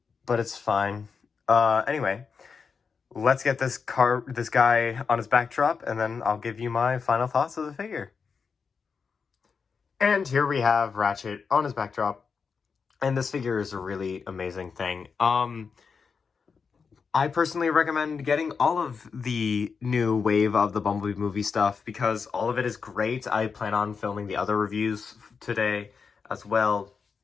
but it's fine. Anyway, let's get this guy on his backdrop, and then I'll give you my final thoughts of the figure. And here we have Ratchet on his backdrop, and this figure is a really amazing thing. I personally recommend getting all of the new wave of the Bumblebee movie stuff because all of it is great. I plan on filming the other reviews today as well.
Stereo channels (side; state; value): right; quieter; 5.6 dB